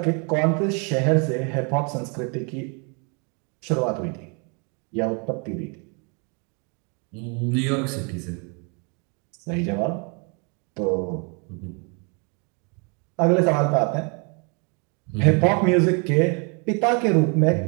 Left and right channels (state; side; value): quieter; left; 35.0 dB